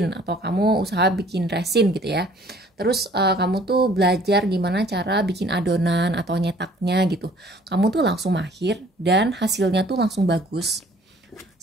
atau kamu usaha bikin resin gitu ya. Terus kamu tuh belajar gimana cara bikin adonan atau nyetaknya gitu. Kamu tuh langsung mahir dan hasilnya tuh langsung bagus.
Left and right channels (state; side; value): normal; both; correlation 0.55